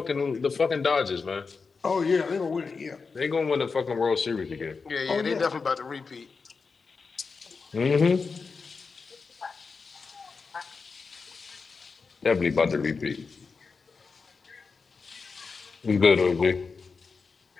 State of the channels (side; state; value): right; quieter; 4.8 dB